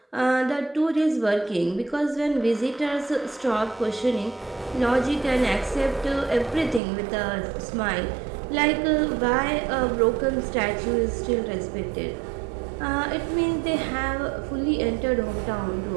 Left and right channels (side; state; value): left; drops out; at 6.8 s